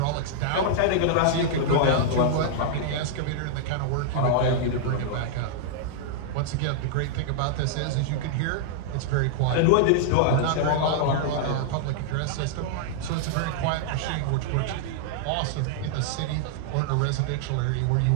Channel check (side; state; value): both; different; correlation -0.01